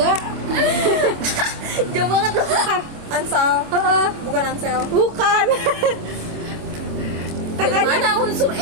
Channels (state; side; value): late; left; 26 ms